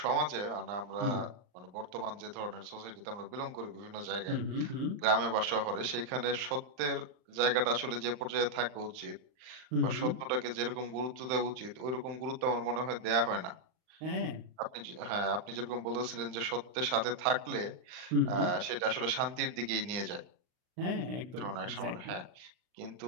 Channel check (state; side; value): late; left; 39 ms